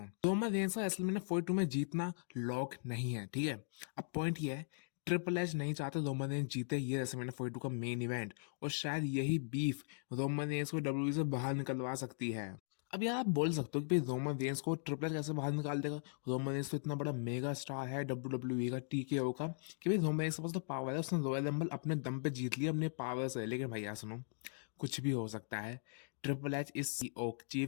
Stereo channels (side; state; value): right; silent; digital silence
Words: रोमन रेंस का रेसलमेनिया 42 में जीतना लॉक नहीं है, ठीक है। अब पॉइंट ये है, ट्रिपल एच नहीं चाहते रोमन रेंस जीते ये रेसलमेनिया 42 का मेन इवेंट, और शायद यही बीफ रोमन रेंस को डब्ल्यूडब्ल्यूई से बाहर निकलवा सकती है। अब यार आप बोल सकते हो कि भाई रोमन रेंस को ट्रिपल एच कैसे बाहर निकाल देगा? रोमन रेंस तो इतना बड़ा मेगा स्टार है डब्ल्यूडब्ल्यूई का, टीकेओ का, कि भाई रोमन रेंस के पास तो पावर है, उसने रॉयल रंबल अपने दम पे जीत लिया अपने पावर से। लेकिन भाई यार सुनो, कुछ भी हो सकता है। Triple H is CO,